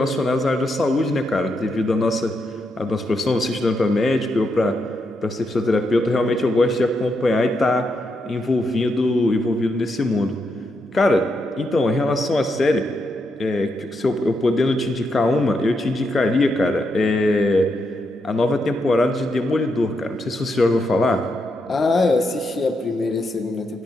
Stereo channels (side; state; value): both; normal; correlation 0.82